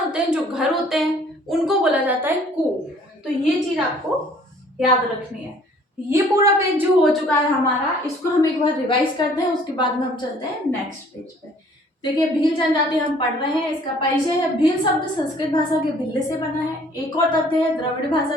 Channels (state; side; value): normal; both; correlation 0.56